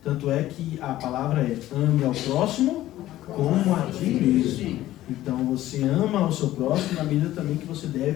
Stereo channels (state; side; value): quieter; right; 14.6 dB